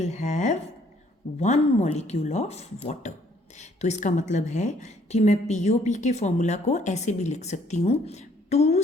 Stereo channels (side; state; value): both; normal; correlation 0.64